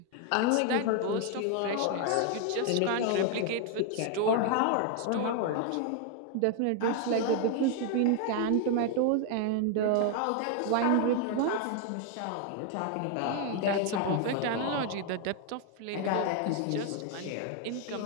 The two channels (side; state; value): both; different; correlation 0.00